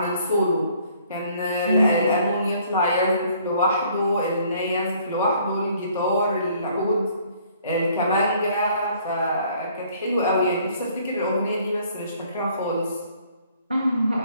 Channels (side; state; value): both; inverted; correlation -0.61